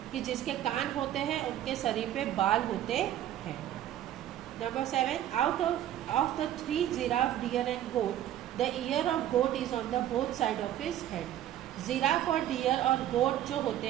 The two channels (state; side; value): quieter; left; 12.0 dB